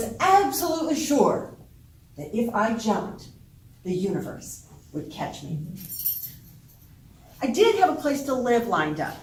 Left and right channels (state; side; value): identical; both; correlation 1.00